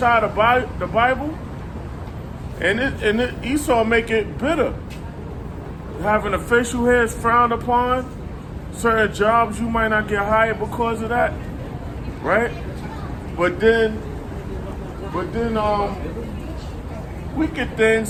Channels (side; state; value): both; identical; correlation 1.00